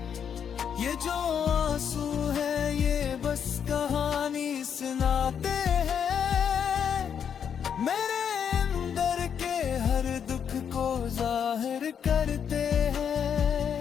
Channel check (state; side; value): quieter; right; 7.8 dB